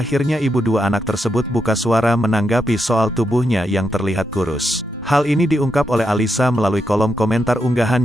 ibu dua anak tersebut buka suara menanggapi soal tubuhnya yang terlihat kurus. Hal ini diungkap oleh Alyssa melalui kolom komentar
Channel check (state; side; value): normal; both; correlation 0.83